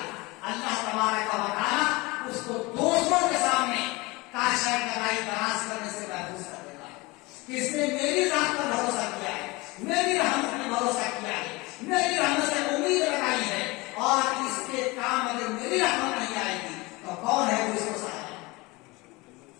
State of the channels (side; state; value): right; quieter; 23.5 dB